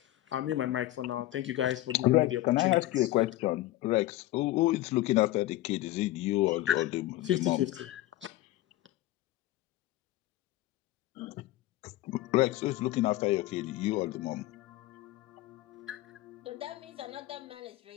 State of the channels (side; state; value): right; quieter; 16.0 dB